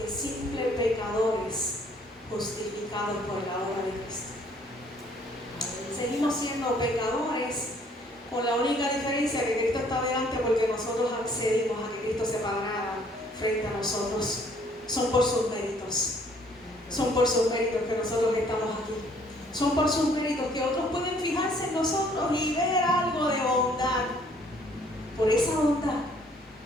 simples pecadores justificados por la obra de Cristo. Seguimos siendo pecadores, con la única diferencia que Cristo está delante porque nosotros accedimos a que Cristo se parara frente a nosotros. Son por sus méritos. Son por sus méritos que nosotros estamos aquí. Son por sus méritos que otros pueden fijarse en nosotros y ver algo de bondad. Por esa bondad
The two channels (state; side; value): normal; both; correlation 0.62